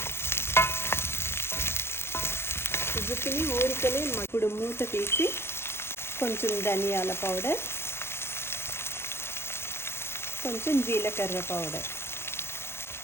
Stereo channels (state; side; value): late; right; 0.12 ms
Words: జుకినీ ఊరికనే ఇప్పుడు మూత తీసి కొంచెం ధనియాల పౌడర్, కొంచెం జీలకర్ర పౌడర్